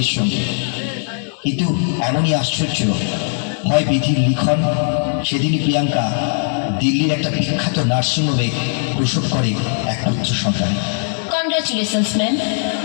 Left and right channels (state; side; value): silent; right; digital silence